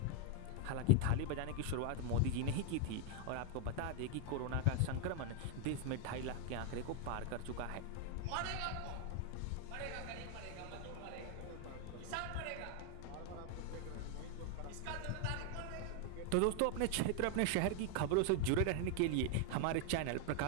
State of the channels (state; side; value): different; both; correlation 0.01